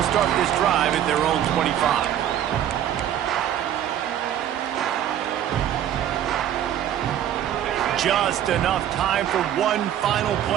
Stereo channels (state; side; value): quieter; left; 10.8 dB